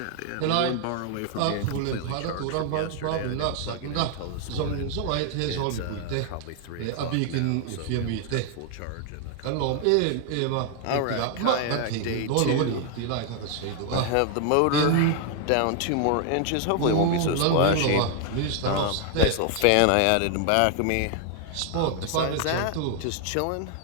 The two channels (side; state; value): both; different; correlation 0.00